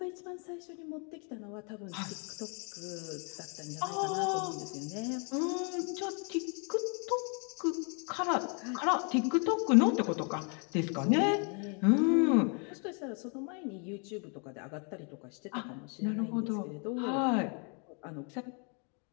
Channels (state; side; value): quieter; right; 37.6 dB